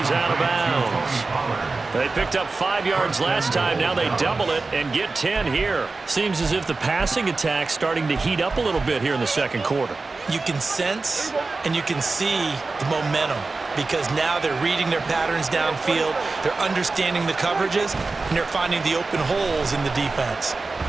out of bounds. They picked up 5 yards last time. Now they double it and get 10 here. Seems as if the passing attack's starting to heat up a little bit here in the second quarter. You can sense and you can see the momentum because now they're reading their patterns downfield, they're understanding the coverages, and they're finding the open holes in the defense.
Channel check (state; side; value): quieter; left; 3.8 dB